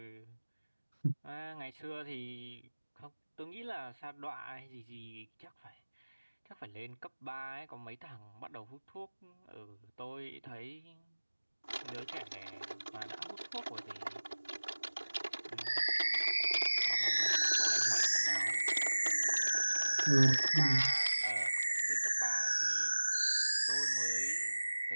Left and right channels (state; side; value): inverted; both; correlation -1.00